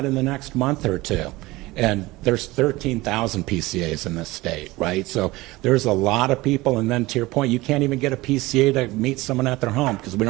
in the next month or two. And there's 13,000 PCAs in this state, right? So there's a lot of people, and then to your point, you can't even get a PCA to meet someone at their home because we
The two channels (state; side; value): quieter; left; 20.2 dB